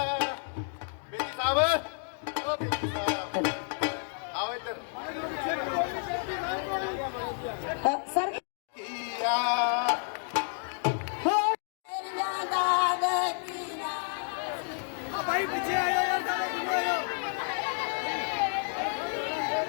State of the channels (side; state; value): right; silent; 58 dB below the other